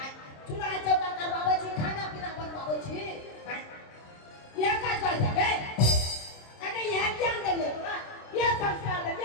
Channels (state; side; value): late; right; 26 ms